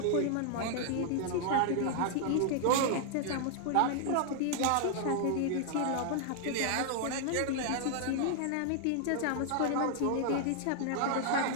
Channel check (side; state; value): both; different; correlation 0.00